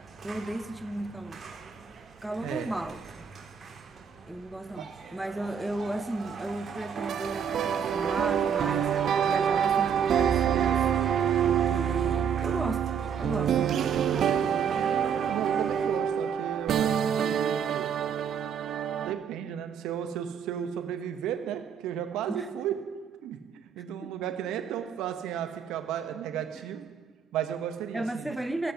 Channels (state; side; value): quieter; left; 7.3 dB